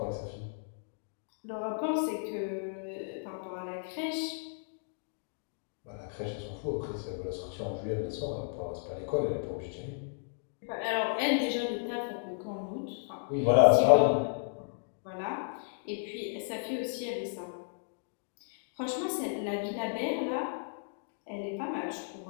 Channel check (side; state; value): right; silent; digital silence